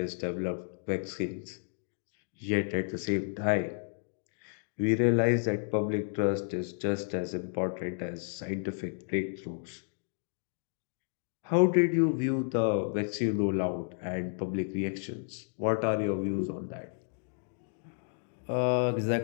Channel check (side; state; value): right; silent; digital silence